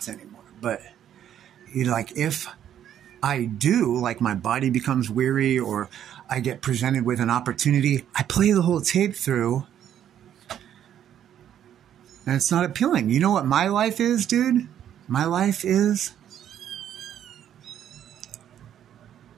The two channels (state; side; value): quieter; left; 10.2 dB